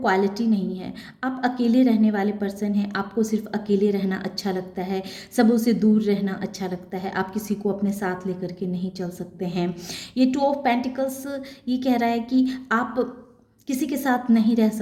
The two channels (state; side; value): identical; both; correlation 1.00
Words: नहीं है, आप अकेले रहने वाले पर्सन हैं, आपको सिर्फ अकेले रहना अच्छा लगता है, सबों से दूर रहना अच्छा लगता है, आप किसी को अपने साथ लेकर के नहीं चल सकते हैं। ये 2 ऑफ पेंटिकल्स ये कह रहा है कि आप किसी के साथ नहीं रह